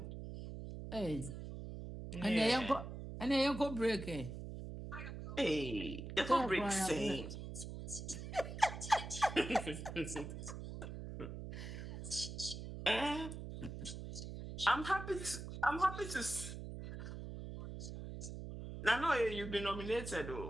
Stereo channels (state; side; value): noise; right; hum, 8 dB below the sound